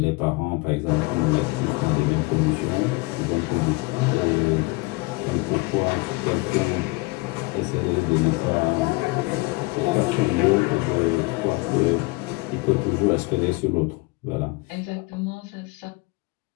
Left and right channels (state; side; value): quieter; right; 25.1 dB